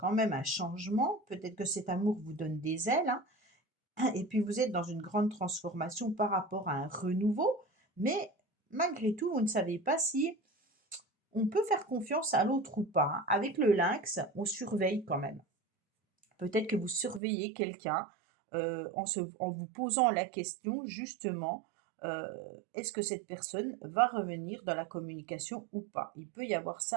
même un changement. Peut-être que cet amour vous donne des ailes, hein, et puis vous êtes dans une grande transformation par rapport à un renouveau. Mais malgré tout, vous ne savez pas si on peut faire confiance à l'autre ou pas, hein. Avec le lynx, on surveille quand même. Peut-être que vous surveillez quelqu'un, en vous posant la question justement, heu, est-ce que cette personne va revenir dans la communication ou pas? Il peut y avoir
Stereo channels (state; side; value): drops out; left; at 17.2 s